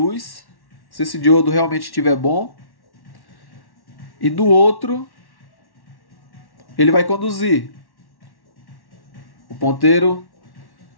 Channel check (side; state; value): right; late; 1.1 ms